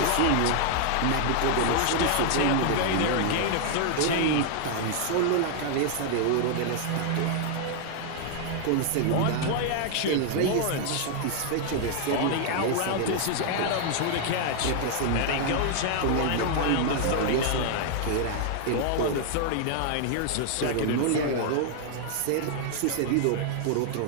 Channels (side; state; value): both; different; correlation 0.00